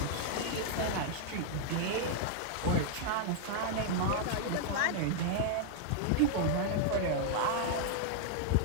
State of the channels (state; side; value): different; both; correlation -0.01